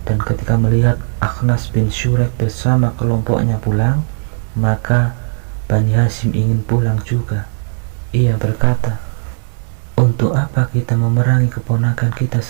Dan ketika melihat Akhnas bin Syuraik bersama kelompoknya pulang, maka Bani Hashim ingin pulang juga. Ia berkata, "Untuk apa kita memerangi keponakan kita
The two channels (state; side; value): silent; left; 57 dB below the other